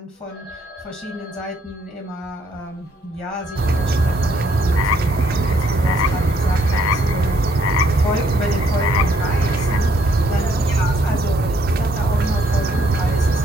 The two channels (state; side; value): normal; both; correlation 0.69